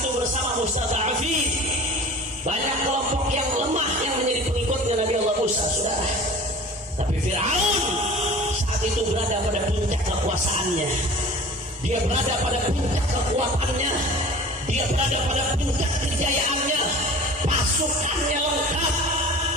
itu bersama mustada'afin, banyak kelompok yang lemah yang menjadi pengikutnya Nabi Allah Musa, saudara. Tapi Fir'aun saat itu berada pada puncak kekuasaannya. Dia berada pada puncak kekuatannya. Dia berada pada puncak kejayaannya. Pasukannya lengkap,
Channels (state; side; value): normal; both; correlation 0.41